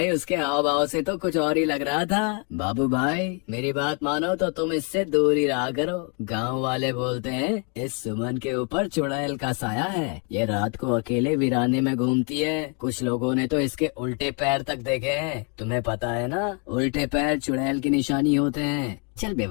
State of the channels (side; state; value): right; quieter; 37.5 dB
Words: उसके हाव भाव से तो कुछ और ही लग रहा था। बाबू भाई मेरी बात मानो तो तुम इससे दूर ही रहा करो। गांव वाले बोलते हैं इस सुमन के ऊपर चुड़ैल का साया है। ये रात को अकेले वीराने में घूमती है। कुछ लोगों ने तो इसके उल्टे पैर तक देखे हैं। तुम्हें पता है ना, उल्टे पैर चुड़ैल की निशानी होते हैं। चल